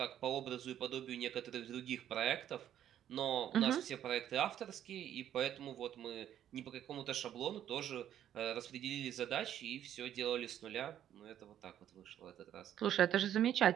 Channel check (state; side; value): quieter; left; 10.8 dB